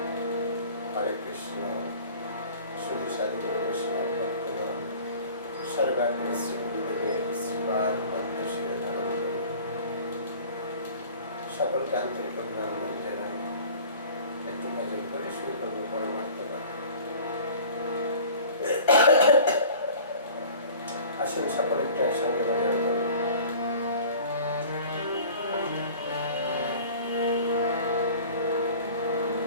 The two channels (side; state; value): both; inverted; correlation -0.45